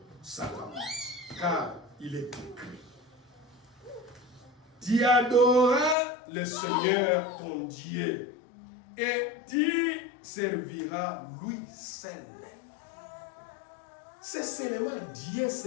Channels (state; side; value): drops out; right; at 6.0 s